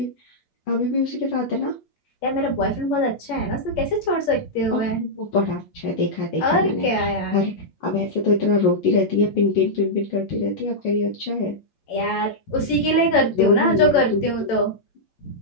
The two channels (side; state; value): right; late; 8.6 ms